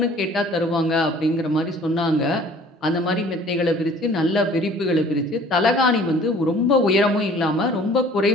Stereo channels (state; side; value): normal; both; correlation 0.51